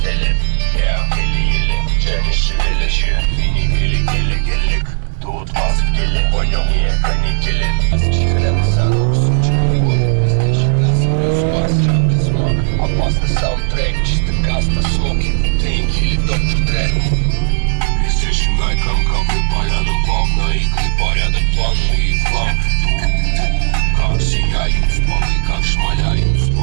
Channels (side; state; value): left; silent; digital silence